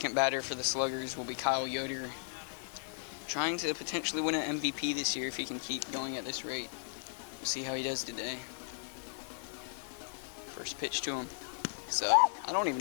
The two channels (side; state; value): right; silent; digital silence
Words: batter for the Sluggers will be Kyle Yoder. Trying to potentially win an MVP this year if he can keep going at this rate. We'll see how he does today. First pitch to him. So, I don't even